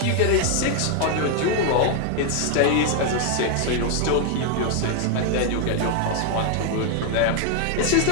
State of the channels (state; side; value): different; both; correlation 0.00